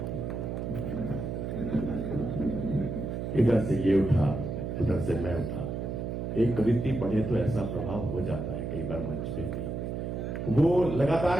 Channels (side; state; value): right; noise; hum, 4 dB below the sound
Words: इधर से ये उठा, उधर से मैं उठा। एक कवित्री पढ़े तो ऐसा प्रभाव हो जाता है कई बार मंच पे भी। वो